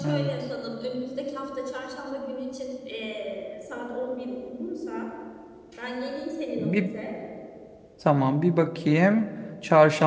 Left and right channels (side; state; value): both; identical; correlation 1.00